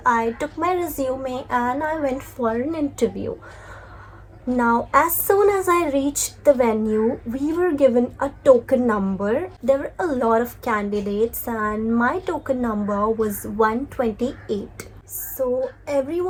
I took my resume and I went for an interview. Now, as soon as I reached the venue, we were given a token number. There were a lot of candidates and my token number was 128. So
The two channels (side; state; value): both; identical; correlation 1.00